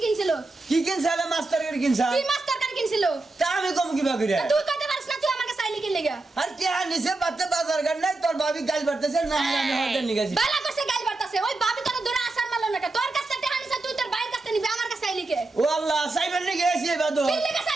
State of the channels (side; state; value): left; quieter; 3.2 dB